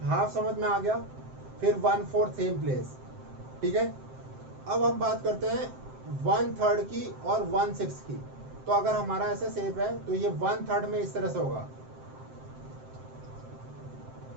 हाफ समझ में आ गया, फिर 1/4 सेम प्लेस, ठीक है। अब हम बात करते हैं 1/3 की और 1/6 की। तो अगर हमारा ऐसा शेप है तो ये 1/3 में इस तरह से होगा,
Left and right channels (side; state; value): left; late; 7.7 ms